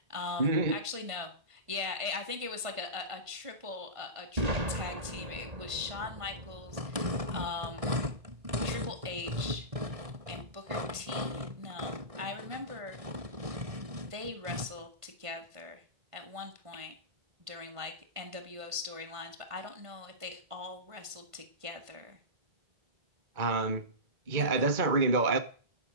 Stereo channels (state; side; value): late; left; 1.5 ms